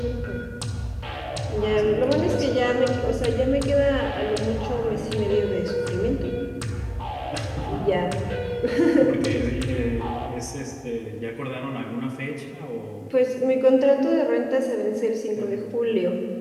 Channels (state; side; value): identical; both; correlation 1.00